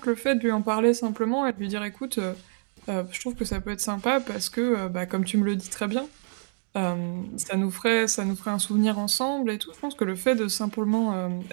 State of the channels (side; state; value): left; silent; 56 dB below the other